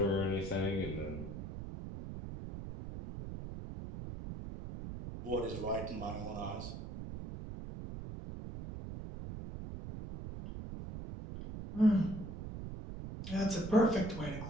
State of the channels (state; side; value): noise; right; rumble, 8 dB below the sound